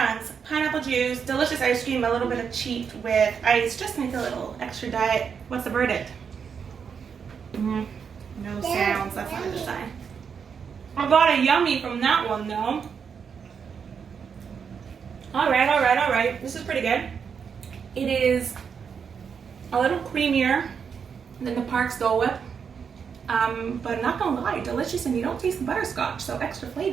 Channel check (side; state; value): left; quieter; 6.6 dB